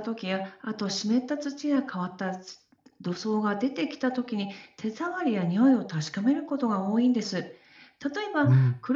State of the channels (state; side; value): identical; both; correlation 1.00